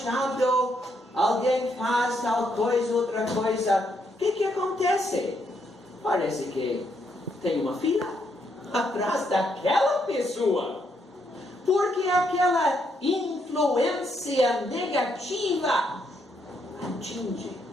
alguém faz tal coisa, outra coisa. O que acontece? Parece que tem uma fila atrás daquela pessoa, porque aquela influência negativa atinge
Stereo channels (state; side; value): normal; both; correlation 0.76